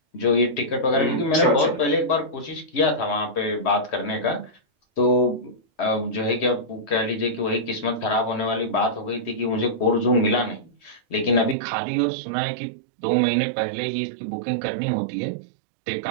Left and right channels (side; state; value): left; drops out; at 11.6 s